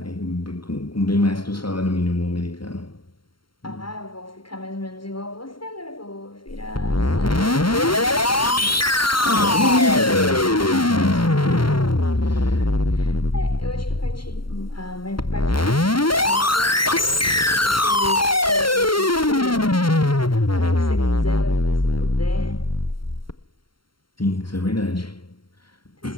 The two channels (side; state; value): right; late; 0.73 ms